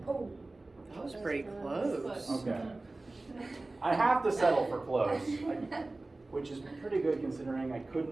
Oh, that was pretty close. Okay. I have to settle for close, which is pretty good considering I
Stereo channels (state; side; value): quieter; left; 3.1 dB